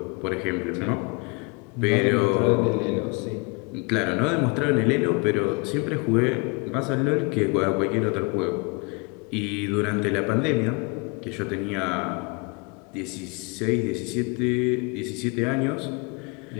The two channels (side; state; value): right; quieter; 31.0 dB